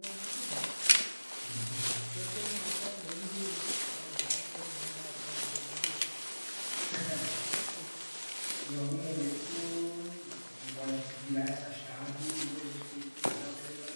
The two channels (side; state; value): both; inverted; correlation -1.00